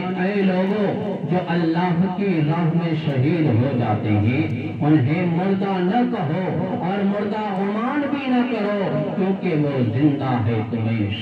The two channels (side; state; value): both; identical; correlation 1.00